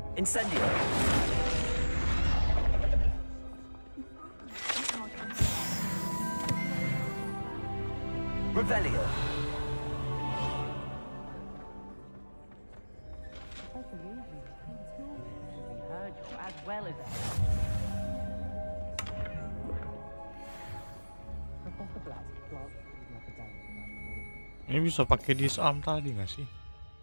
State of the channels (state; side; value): inverted; both; correlation -1.00